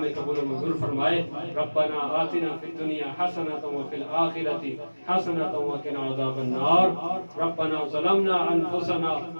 قبول و منظور فرمائے. ربنا آتنا فی الدنیا حسنۃ وفی الآخرۃ حسنۃ وقنا عذاب النار. ربنا ظلمنا انفسنا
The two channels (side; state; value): both; inverted; correlation -1.00